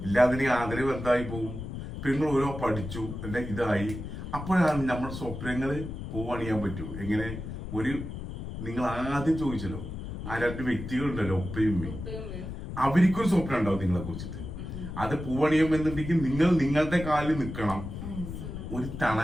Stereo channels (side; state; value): left; noise; rumble, 8 dB below the sound